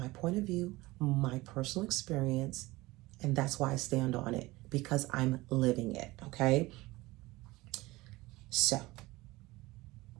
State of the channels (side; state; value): left; quieter; 20.3 dB